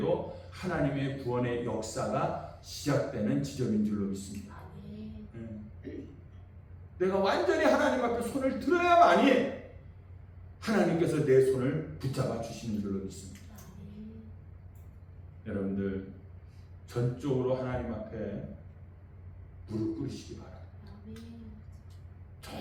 하나님의 구원의 역사가 시작되는 지점인 줄로 믿습니다. 내가 완전히 하나님 앞에 손을 들어야만이 하나님께서 내 손을 붙잡아 주시는 줄로 믿습니다. 여러분들 전적으로 하나님 앞에 무릎 꿇으시기 바랍니다.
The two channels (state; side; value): identical; both; correlation 1.00